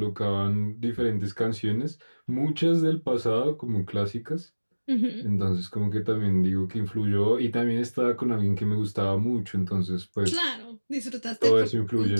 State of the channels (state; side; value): inverted; both; correlation -1.00